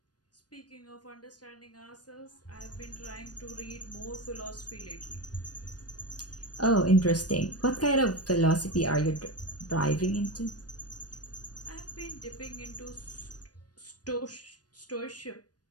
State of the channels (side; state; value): right; late; 0.69 ms